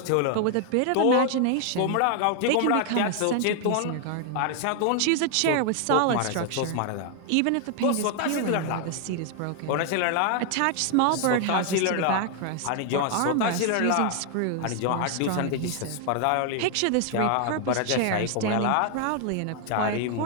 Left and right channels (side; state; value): both; different; correlation 0.00